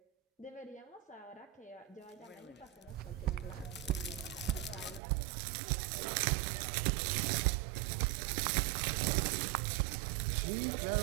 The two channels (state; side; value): drops out; left; at 5.0 s